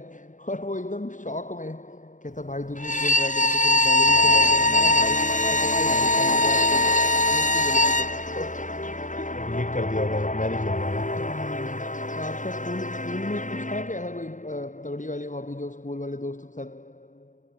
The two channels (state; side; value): late; right; 0.37 ms